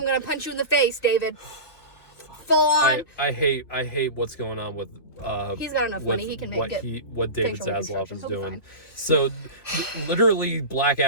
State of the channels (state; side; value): late; right; 2.8 ms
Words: gonna punch you in the face, David. Full on. I hate what's going on with. He's got enough with money. He can make what it. what David facial Zaslav reconstruction. is He'll be doing. fine. So, literally, Black